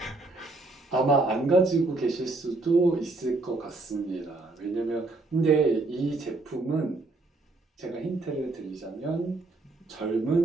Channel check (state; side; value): quieter; left; 3.2 dB